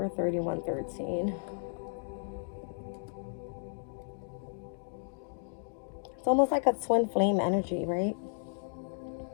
3113. It's almost like a twin flame energy, right?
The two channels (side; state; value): right; silent; digital silence